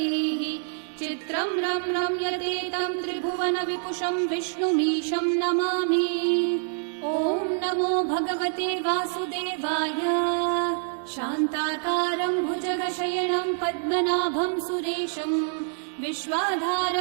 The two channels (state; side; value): silent; left; digital silence